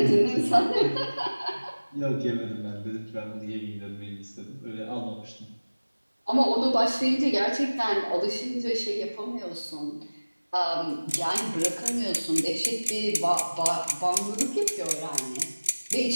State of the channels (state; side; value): inverted; both; correlation -1.00